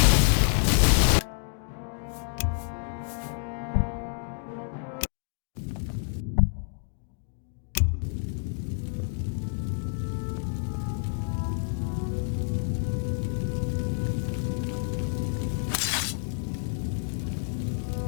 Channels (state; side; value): silent; right; digital silence